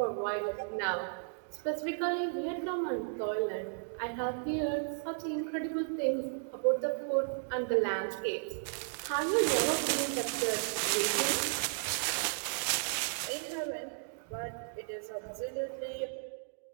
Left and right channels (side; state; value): left; silent; digital silence